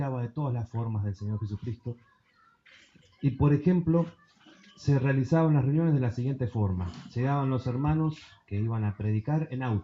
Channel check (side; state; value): both; identical; correlation 1.00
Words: de todas las formas del Señor Jesucristo. Y por ejemplo, se realizaban las reuniones de la siguiente forma. Llegaban los hermanos que iban a predicar en